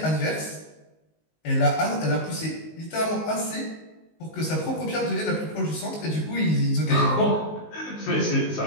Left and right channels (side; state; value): right; late; 19 ms